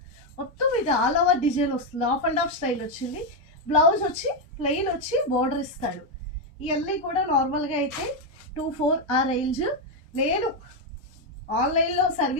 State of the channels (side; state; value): both; normal; correlation 0.04